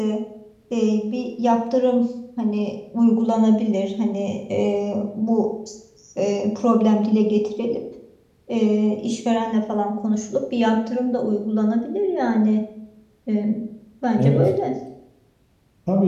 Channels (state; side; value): identical; both; correlation 1.00